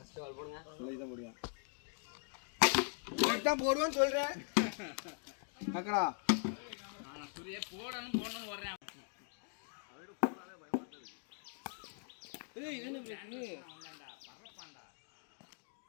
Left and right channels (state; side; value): silent; right; 51 dB below the other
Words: பால் போடுங்க. சொல்லிதான் போடுவேன். கரெக்ட்டா போடுவேன்னு சொல்றேன். அக்கடா நான் சுரியே போடணும் வரேன். அவரோட போடாதே பயமாட்டது. ஏய் இது என்ன பிரச்சனை? அவன்டா பறப்பான்டா.